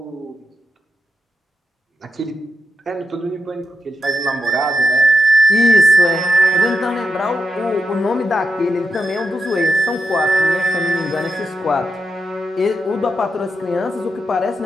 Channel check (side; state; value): both; normal; correlation 0.85